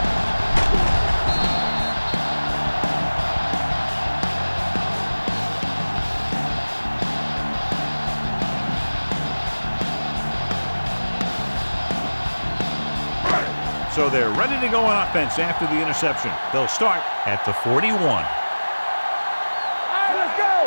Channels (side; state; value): both; inverted; correlation -1.00